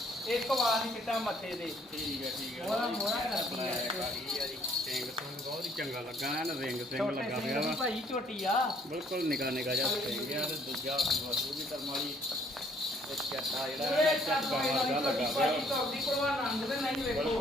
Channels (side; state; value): both; normal; correlation 0.64